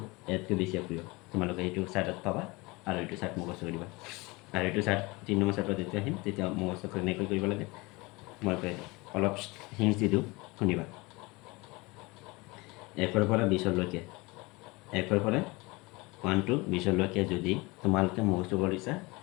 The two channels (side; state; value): right; quieter; 24.3 dB